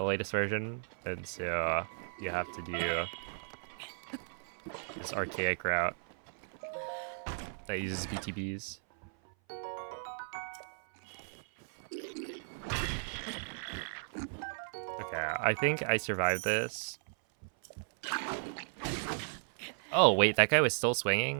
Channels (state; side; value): silent; left; 54 dB below the other